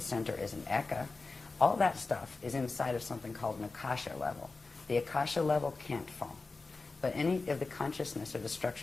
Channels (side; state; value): right; quieter; 3.8 dB